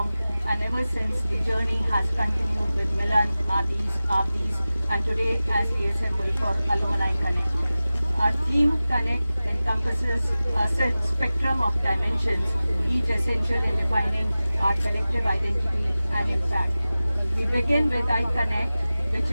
and ever since the journey has continued with Milan, Adis, and today as we assemble for Alumni Connect. Our theme Connect encompasses a spectrum of dimensions, each essential in defining our collective identity and impact. We begin with iConnect, which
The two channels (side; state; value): both; inverted; correlation -0.96